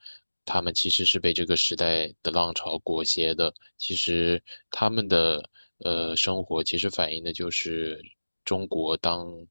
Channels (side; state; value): both; inverted; correlation -1.00